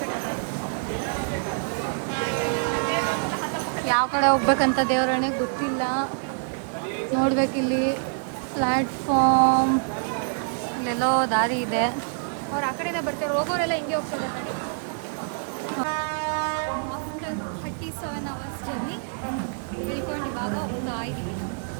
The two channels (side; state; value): left; silent; 61 dB below the other